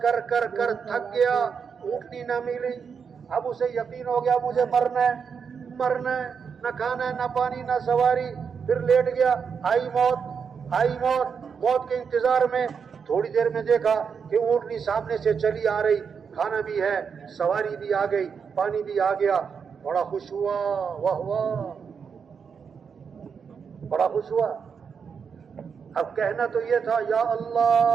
کر کر کر تھک گیا، اونٹنی نہ ملی. اب اسے یقین ہو گیا مجھے مرنا ہے، مرنا ہے، نہ کھانا ہے، نہ پانی، نہ سواری. پھر لیٹ گیا، آئی موت، آئی موت کے انتظار میں تھوڑی دیر میں دیکھا کہ اونٹنی سامنے سے چلی آ رہی، کھانا بھی ہے، سواری بھی آ گئی، پانی بھی آ گیا، بڑا خوش ہوا، واہ واہ، بڑا خوش ہوا۔ اب کہنا تو یہ تھا یا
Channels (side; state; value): left; quieter; 6.3 dB